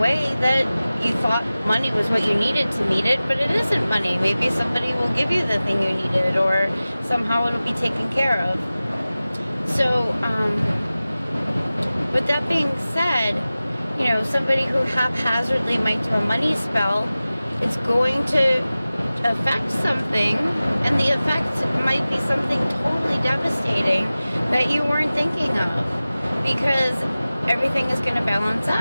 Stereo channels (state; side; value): inverted; both; correlation -0.97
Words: that you thought money was what you needed to meet it, but it isn't money. Maybe somebody will give you the thing you needed, or somehow it'll be taken care of. So, with that being said, you know, somebody who haphazardly might do a money spell, it's going to affect something, and the effect might be something totally devastating that you weren't thinking of, because everything is going to balance